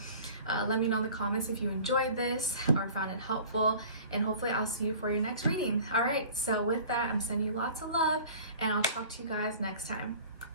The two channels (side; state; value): both; inverted; correlation -0.45